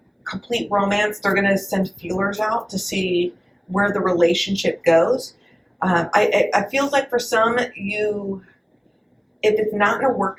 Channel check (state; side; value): identical; both; correlation 1.00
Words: complete romance. They're going to send feelers out to see where the relationship goes. I feel like for some, if it's not in a work